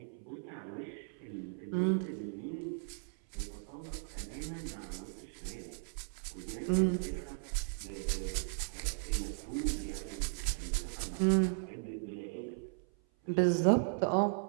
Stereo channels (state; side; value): silent; left; 53 dB below the other